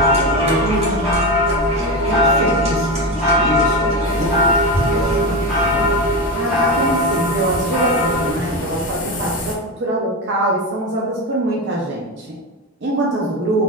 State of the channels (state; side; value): normal; both; correlation 0.18